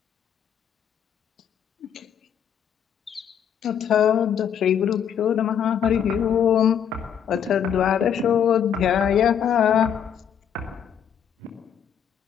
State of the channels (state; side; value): quieter; right; 8.4 dB